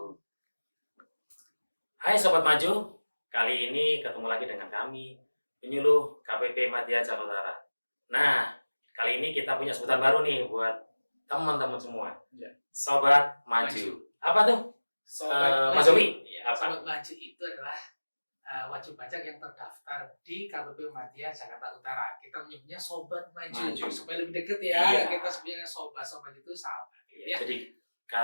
Hai Sobat Maju, kali ini ketemu lagi dengan kami, penyuluh KPP Madya Jakarta Utara. Nah, kali ini kita punya sebutan baru nih buat teman-teman semua. Ya. Sobat Maju. Apa tuh? Mas Zobi? Sobat Maju itu adalah wajib pajak yang terdaftar di KPP Madya Jakarta Utara. Kita menyebutnya Sobat Maju. Supaya lebih deket ya. Iya. Kita sebenarnya sobat itu sahabat. Ya. Jadi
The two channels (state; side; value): inverted; both; correlation -1.00